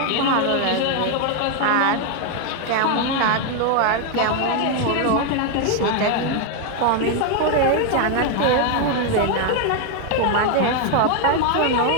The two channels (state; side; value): different; both; correlation 0.01